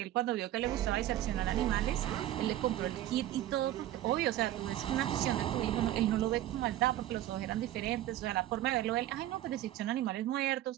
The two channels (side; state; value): left; quieter; 13.4 dB